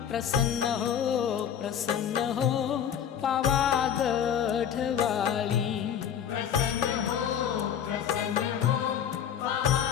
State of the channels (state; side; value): quieter; right; 8.9 dB